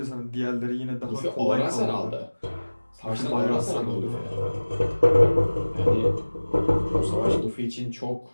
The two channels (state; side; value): inverted; both; correlation -1.00